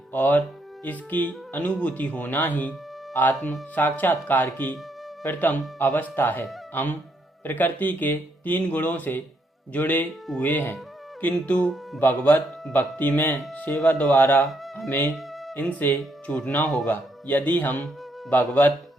और इसकी अनुभूति होना ही आत्म साक्षात्कार की प्रथम अवस्था है। हम प्रकृति के 3 गुणों से जुड़े हुए हैं, किंतु भगवत भक्ति में सेवा द्वारा हमें इनसे छूटना होगा। यदि हम भगवत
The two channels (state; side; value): normal; both; correlation 0.74